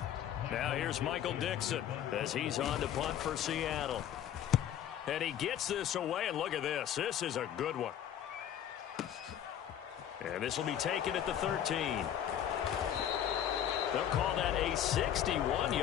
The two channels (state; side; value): quieter; right; 10.2 dB